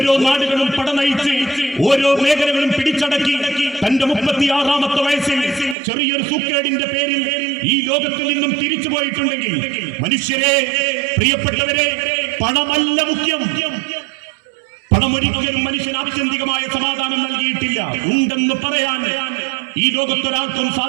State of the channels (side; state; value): left; drops out; at 5.8 s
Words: നാടുകളും പടനയിച്ച് ഓരോ മേഖലകളും പിടിച്ചടക്കി തന്റെ 36ാമത്തെ വയസ്സിൽ ചെറിയൊരു സൂക്കേടിന്റെ പേരിൽ ഈ ലോകത്തിൽ നിന്നും തിരിച്ചു പോയിട്ടുണ്ടെങ്കിൽ, മനുഷ്യരെ, പ്രിയപ്പെട്ടവരെ, പണമല്ല മുഖ്യം. പണമൊരിക്കലും മനുഷ്യന് ആത്യന്തികമായ സമാധാനം നൽകിയിട്ടില്ല. ഉണ്ടെന്ന് പറയാൻ ഈ ലോകത്തൊരാൾക്കും